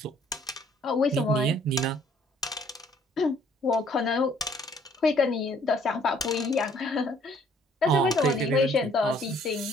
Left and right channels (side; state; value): both; normal; correlation 0.61